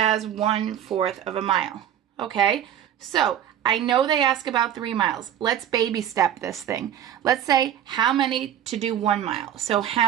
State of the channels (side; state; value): left; quieter; 10.4 dB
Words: 1/4 of a mile. Okay? So I know they ask about 3 miles. Let's baby step this thing. Let's say how many to do 1 mile. So